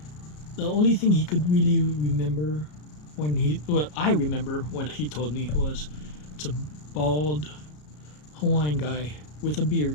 The only thing he could really remember I remember when he told me was it's a bald Hawaiian guy with a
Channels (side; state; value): right; late; 33 ms